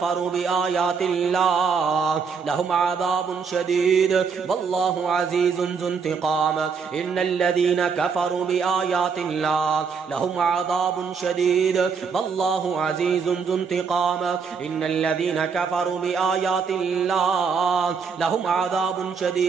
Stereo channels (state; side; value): quieter; left; 5.8 dB